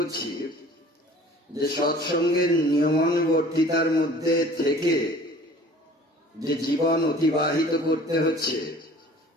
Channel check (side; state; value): both; normal; correlation 0.48